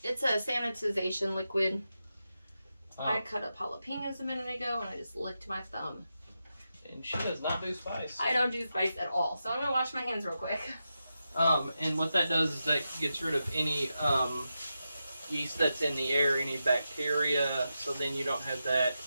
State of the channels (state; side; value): inverted; both; correlation -0.89